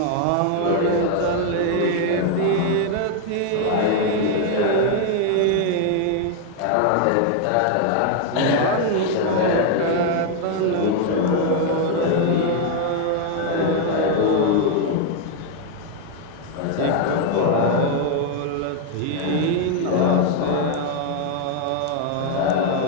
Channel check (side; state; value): both; different; correlation 0.01